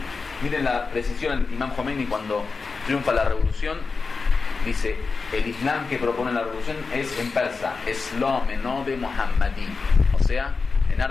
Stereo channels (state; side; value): quieter; right; 4.5 dB